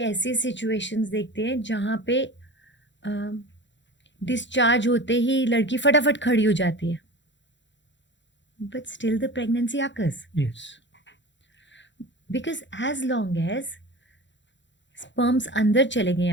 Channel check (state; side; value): late; right; 0.53 ms